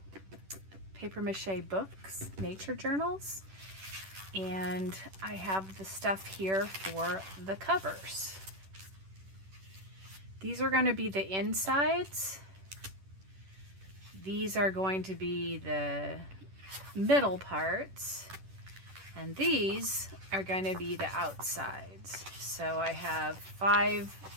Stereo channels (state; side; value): late; left; 10 ms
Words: paper mache books, nature journals, and I have the stuff here for the covers. These are going to be the insides. These are going to be the middle parts. And these are going to be the outsides. So I have 5